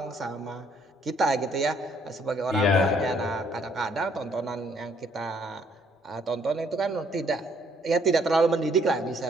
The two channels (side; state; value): both; normal; correlation 0.66